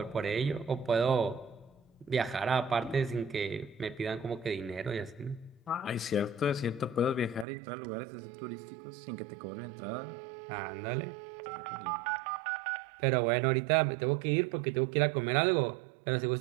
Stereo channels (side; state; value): left; drops out; at 7.5 s